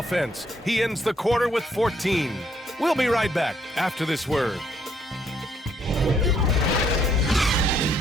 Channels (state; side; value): normal; both; correlation 0.70